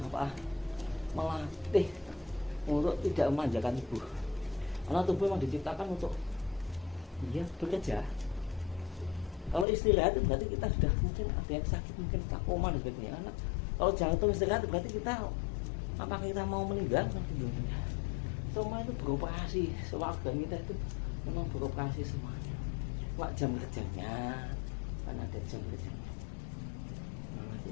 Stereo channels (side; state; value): right; drops out; at 9.7 s